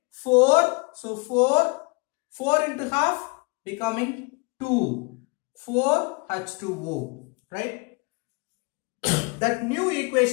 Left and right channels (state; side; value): quieter; right; 29.0 dB